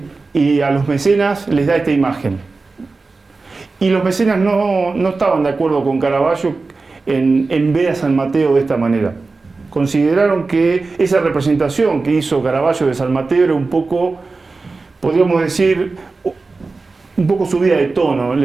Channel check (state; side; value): quieter; left; 3.9 dB